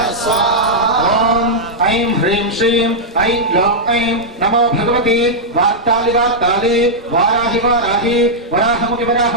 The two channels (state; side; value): normal; both; correlation -0.07